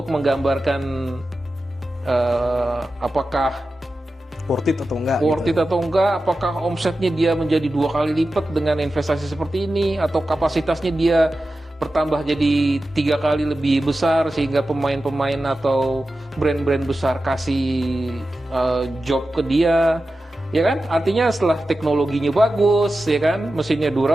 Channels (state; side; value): normal; both; correlation 0.93